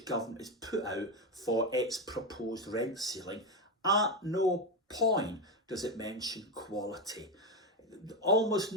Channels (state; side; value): normal; both; correlation 0.11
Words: has put out for its proposed rent ceiling. At no point does it mention quality. Almost